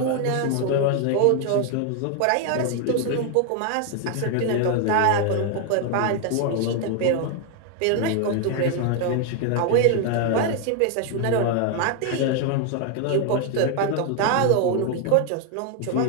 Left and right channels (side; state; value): both; different; correlation 0.01